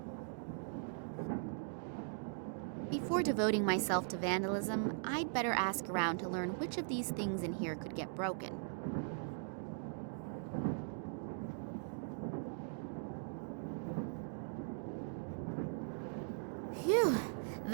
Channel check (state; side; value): silent; left; digital silence